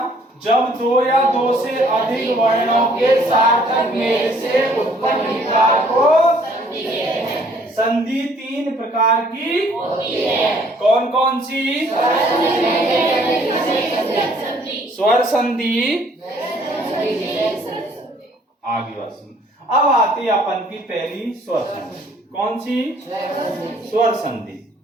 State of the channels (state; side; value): normal; both; correlation 0.60